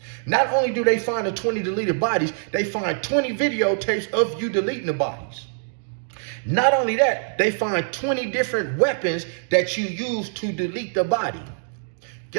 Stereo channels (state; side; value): silent; left; digital silence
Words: Not only do they find the 20 deleted bodies, they find 20 videotapes of you deleting the bodies. Not only that, they find 20 different weapons that you used to delete the body.